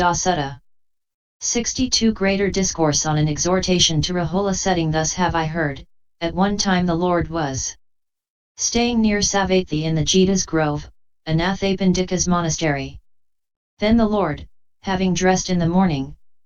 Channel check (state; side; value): identical; both; correlation 1.00